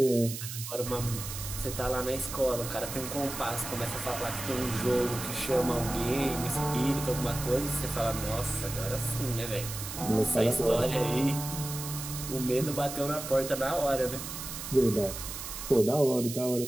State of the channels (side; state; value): right; noise; hiss, 8 dB below the sound